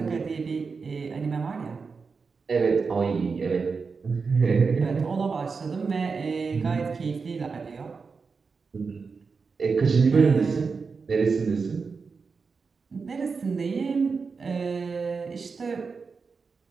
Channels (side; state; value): left; quieter; 4.9 dB